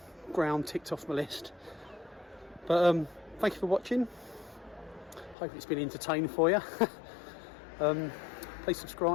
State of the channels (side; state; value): right; drops out; at 5.4 s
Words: ground ticked off my list. But thank you for watching. Hope it's been entertaining for you. Please